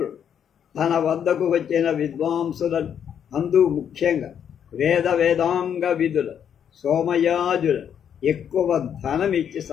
తన వద్దకు వచ్చిన విద్వాంసులను, అందు ముఖ్యంగా వేదాంగ విధుల సోమయాజుల ఎక్కువ ధనమిచ్చి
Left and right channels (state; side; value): quieter; right; 8.6 dB